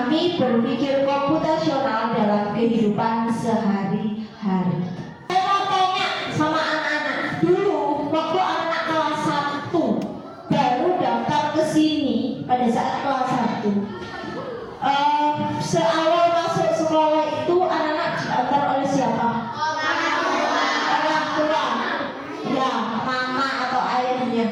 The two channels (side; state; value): both; identical; correlation 1.00